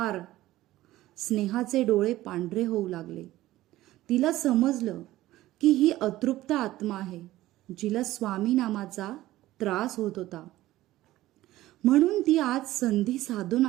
स्नेहाचे डोळे पांढरे होऊ लागले. तिला समजलं की ही अतृप्त आत्मा आहे, जिला स्वामी नामाचा त्रास होत होता. म्हणून ती आज संधी साधून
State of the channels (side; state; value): left; quieter; 16.0 dB